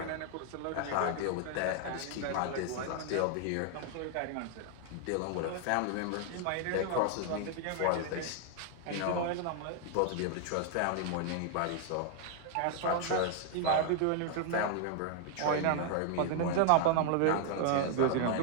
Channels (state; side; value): different; both; correlation 0.00